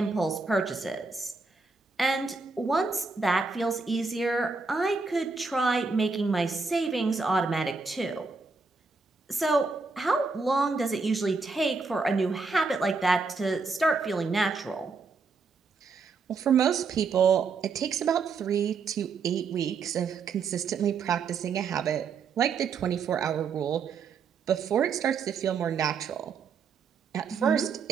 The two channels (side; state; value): left; quieter; 4.6 dB